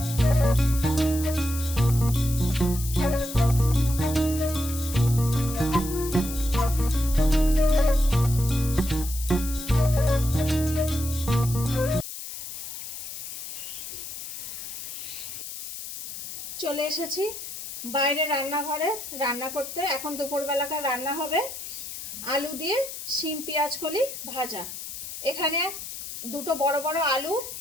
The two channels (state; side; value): noise; left; hiss, 9 dB below the sound